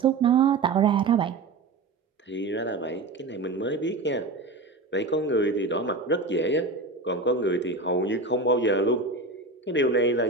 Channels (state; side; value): quieter; left; 3.4 dB